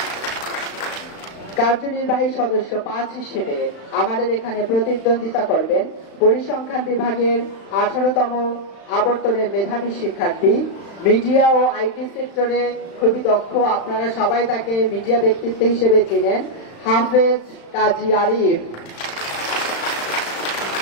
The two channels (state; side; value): late; right; 35 ms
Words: কার্যনির্বাহী সদস্য 5 হিসেবে আমাদের এখানে প্রতিদ্বন্দ্বিতা করবেন পরিসংখ্যান বিভাগের 18তম আবর্তনের মেধাবী শিক্ষার্থী, মিডিয়া ও আইটি সেক্টরে খুবই দক্ষ, আপনারা সবাই তাকে মিডিয়া ব্যক্তিত্ব হিসেবে চিনেন, হাফেজ কাজী আরিফ।